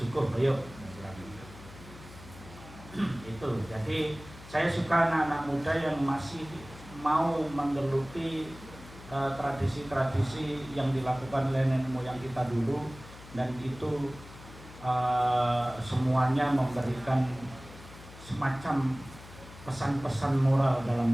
ayo. Itu, jadi saya suka anak-anak muda yang masih mau menggeluti tradisi-tradisi yang dilakukan oleh nenek moyang kita dulu, dan itu semuanya memberikan semacam pesan-pesan moral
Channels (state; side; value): noise; left; hum, 17 dB below the sound